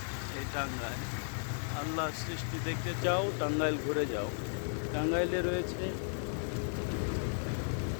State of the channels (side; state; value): right; silent; digital silence